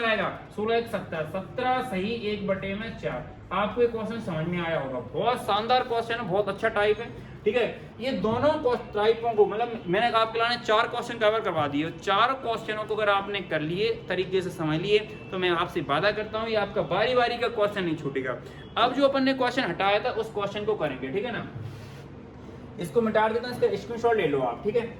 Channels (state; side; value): identical; both; correlation 1.00